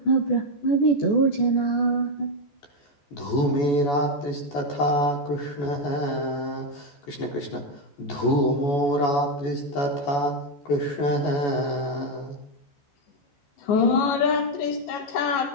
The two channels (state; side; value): late; right; 14 ms